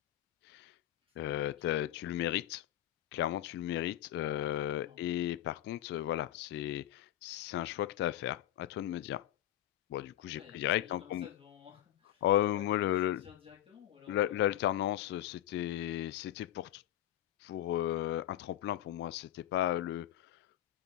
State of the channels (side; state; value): right; quieter; 12.9 dB